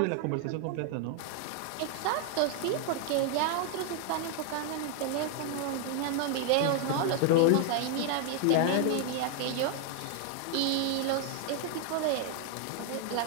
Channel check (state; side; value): different; both; correlation 0.00